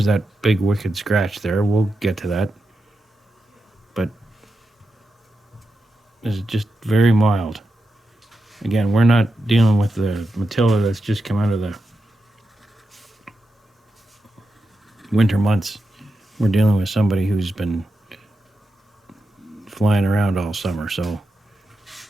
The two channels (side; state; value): both; normal; correlation 0.88